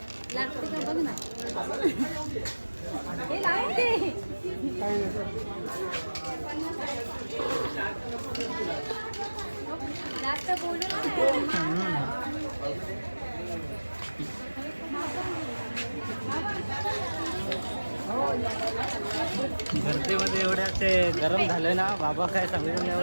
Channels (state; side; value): inverted; both; correlation -1.00